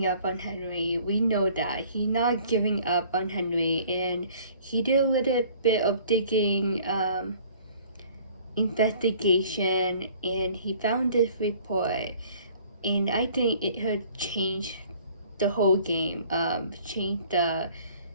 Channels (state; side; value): inverted; both; correlation -0.54